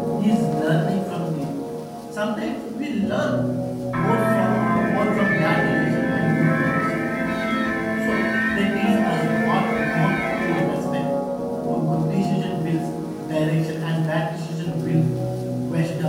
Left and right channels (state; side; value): identical; both; correlation 1.00